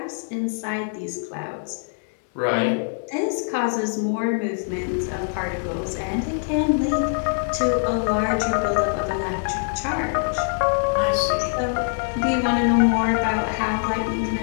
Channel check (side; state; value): right; silent; 63 dB below the other